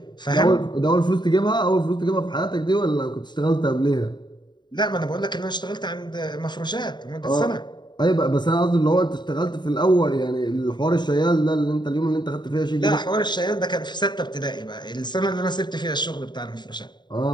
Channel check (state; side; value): late; right; 0.21 ms